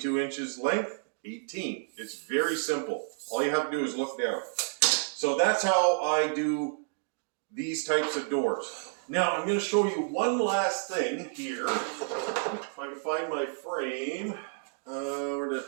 inches length, 18. It's very simple. All you have to do is look down. So that's how I do these types of doors. Now I'm going to show you one last thing here. If I can find my frame. Where did I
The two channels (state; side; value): silent; left; digital silence